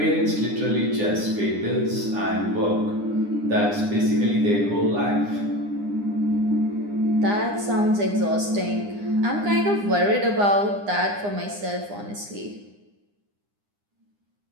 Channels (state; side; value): late; left; 9.8 ms